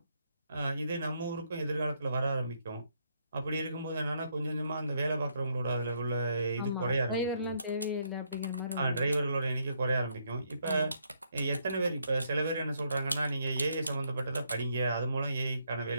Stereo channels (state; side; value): inverted; both; correlation -0.74